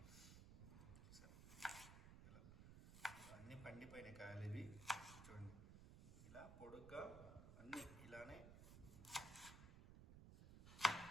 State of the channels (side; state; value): right; noise; rumble, 12 dB below the sound